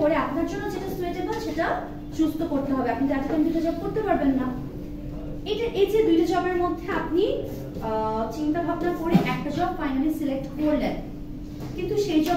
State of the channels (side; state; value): both; identical; correlation 1.00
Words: করে আপনার জন্য যেটা সুইটেবল সেটা চুজ করতে হবে। আপনি তার জন্য দুইটা জব করতে পারবেন না। এই যে দুইটা জবের মধ্যে আপনি চিন্তা ভাবনা করে একটা জব ফাইনালি সিলেক্ট করলেন, কিন্তু সেই